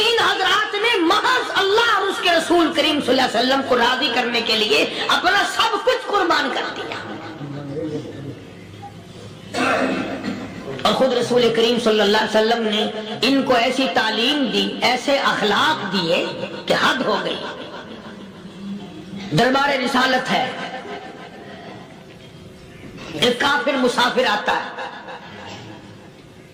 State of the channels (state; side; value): identical; both; correlation 1.00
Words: हजरात ने महज अल्लाह और उसके रसूल करीम सल्लल्लाहु अलैहि वसल्लम को राजी करने के लिए अपना सब कुछ कुर्बान कर दिया। और खुद रसूल करीम सल्लल्लाहु अलैहि वसल्लम ने इनको ऐसी तालीम दी, ऐसे अखलाक दिए कि हद हो गई। दरबार रिसालत है, एक काफिर मुसाफिर आता